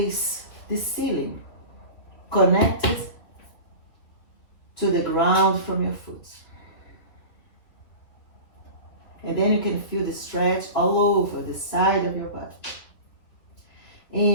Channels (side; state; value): right; late; 3.3 ms